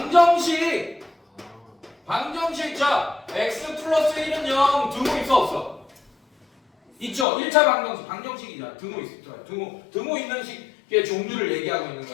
자, x 플러스 1은 0. 등호 있어 없어? 있죠. 1차 방정식. 방정식이잖아. 등호 있어. 등호 있는 식의 종류를 얘기하고 있는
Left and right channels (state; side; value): drops out; right; at 7.2 s